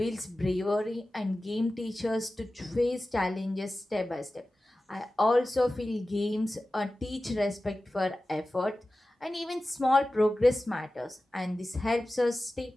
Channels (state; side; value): normal; both; correlation 0.95